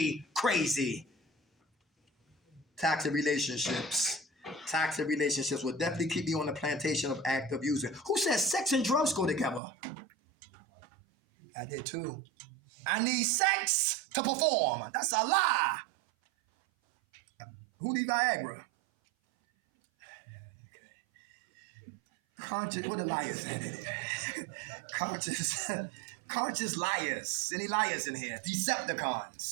crazy. Toxic relationships. Toxic relationships will definitely keep you on the plantation of active using. Who says sex and drugs go together? I did too. I need sex to perform. That's a lie. Who need Viagra? Conscious, what the liars at it? Conscious liars. Any liars in here?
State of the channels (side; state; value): left; drops out; at 9.6 s